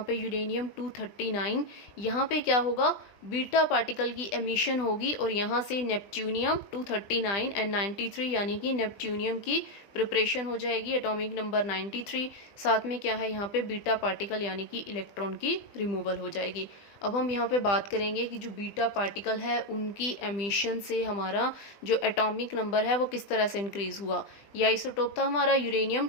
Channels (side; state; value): right; late; 20 ms